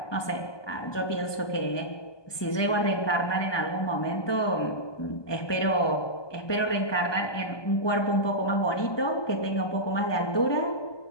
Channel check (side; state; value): right; late; 1.2 ms